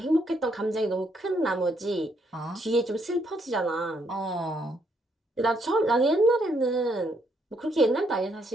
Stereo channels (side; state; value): both; normal; correlation 0.73